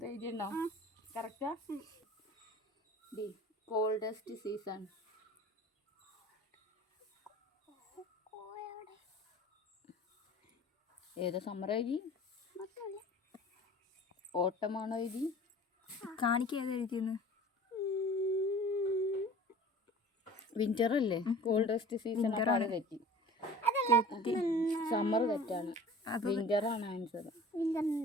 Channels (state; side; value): normal; both; correlation 0.43